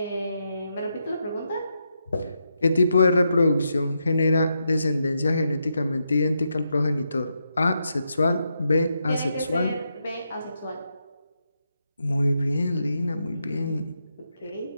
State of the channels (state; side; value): inverted; both; correlation -0.83